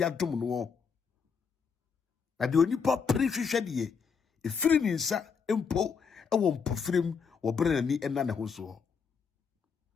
adom no na de onipa prehwehwe de efiri ni nsa empo ewo mpofrem wo brenani ena ne ho so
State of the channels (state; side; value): quieter; right; 5.9 dB